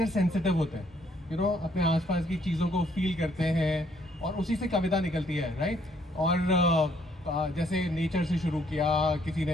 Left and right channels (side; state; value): both; normal; correlation 0.67